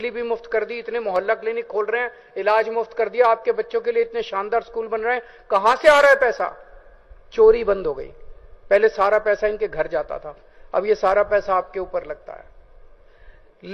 भी मुफ्त कर दी, इतने मोहल्ला क्लिनिक खोल रहे हैं, इलाज मुफ्त कर दिया, आपके बच्चों के लिए इतने शानदार स्कूल बन रहे हैं। कहां से आ रहा है पैसा? चोरी बंद हो गई। पहले सारा पैसा इनके घर जाता था, अब ये सारा पैसा आपके ऊपर लगता है।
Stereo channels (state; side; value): identical; both; correlation 1.00